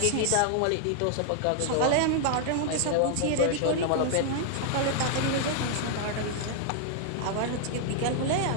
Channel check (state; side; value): different; both; correlation 0.00